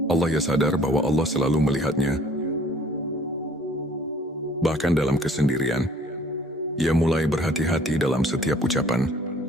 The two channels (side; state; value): both; normal; correlation 0.55